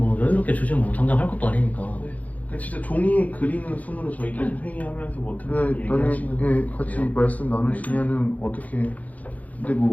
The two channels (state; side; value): late; right; 0.075 ms